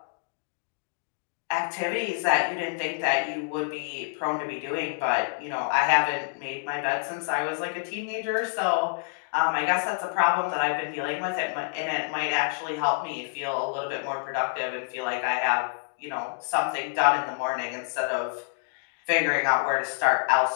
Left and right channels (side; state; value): right; silent; digital silence